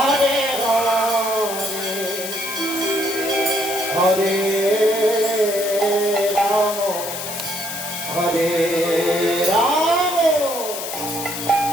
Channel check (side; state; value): left; noise; hiss, 7 dB below the sound